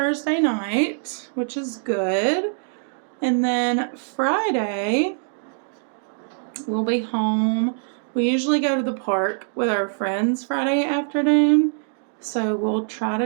night, which is good. And then Friday, we'll be home. We usually go to the park with our friends Friday afternoon. So we'll try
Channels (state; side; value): silent; left; digital silence